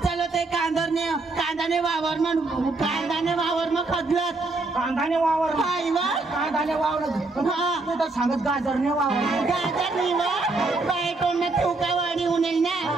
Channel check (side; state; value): left; quieter; 3.3 dB